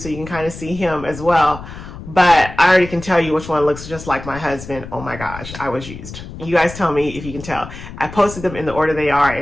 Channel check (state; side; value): noise; left; rumble, 13 dB below the sound